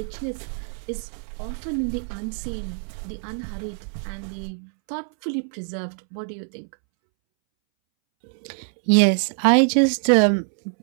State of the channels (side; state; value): left; silent; 62 dB below the other